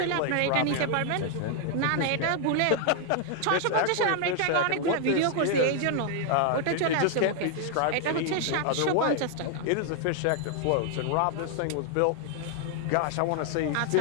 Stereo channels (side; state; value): both; different; correlation 0.00